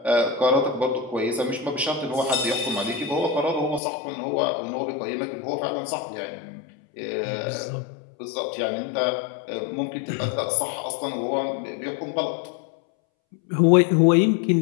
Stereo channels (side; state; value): right; drops out; at 3.8 s